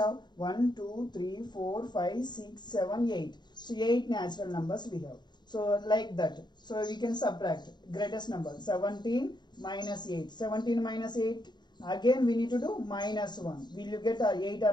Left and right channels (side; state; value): right; late; 0.21 ms